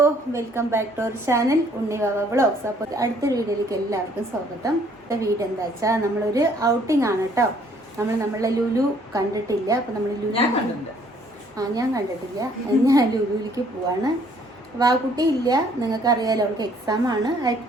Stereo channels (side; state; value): both; normal; correlation 0.62